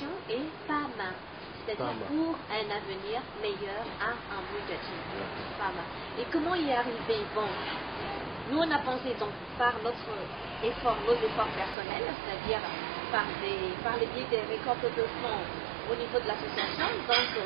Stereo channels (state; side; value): drops out; left; at 11.8 s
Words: est PAMA. C'est-à-dire pour un avenir meilleur à Amoujachi. Et comment y arriver? Bon, nous on a pensé donc par nos efforts personnels, c'est-à-dire par le biais des récoltes de fonds au niveau de l'association, donc